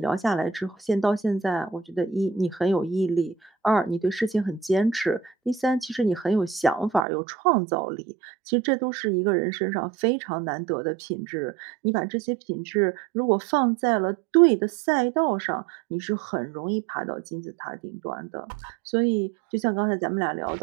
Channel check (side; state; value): left; drops out; at 7.1 s